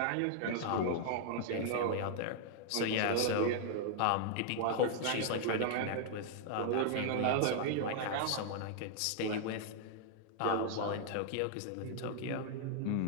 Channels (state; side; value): different; both; correlation -0.01